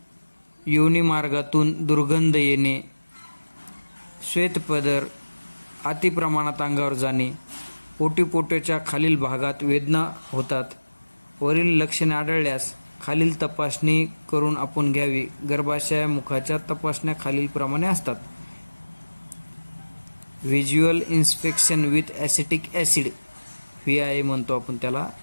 योनिमार्गातून दुर्गंध येणे, श्वेतपदर अतिप्रमाणात अंगावर जाणे, पोटाच्या खालील भागात वेदना होतात. वरील लक्षणे आढळल्यास खालील तपासणी करून आपण घ्यावी. गर्भाशयामुखाच्या तपासण्या खालीलप्रमाणे असतात. Visual inspection with acetic acid, VIA म्हणतो आपण त्याला.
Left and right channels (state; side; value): inverted; both; correlation -1.00